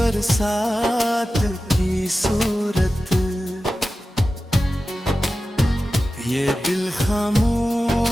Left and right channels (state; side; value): normal; both; correlation 0.94